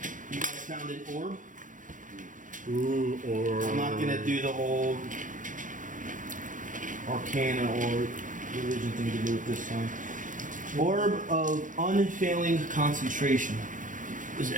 You guys found an orb. Ooh, or I'm not going to do the whole Arcana or religion thing to do with this time. Orb of unfailing concentration. What does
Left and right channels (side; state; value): left; late; 0.38 ms